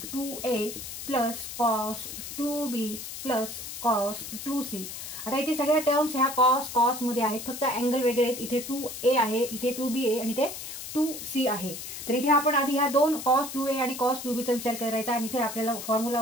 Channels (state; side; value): noise; left; hiss, 9 dB below the sound